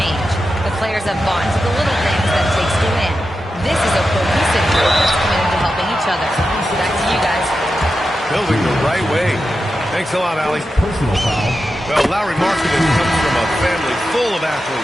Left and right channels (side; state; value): both; normal; correlation 0.90